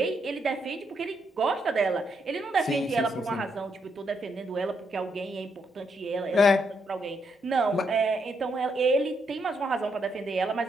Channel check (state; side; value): normal; both; correlation 0.78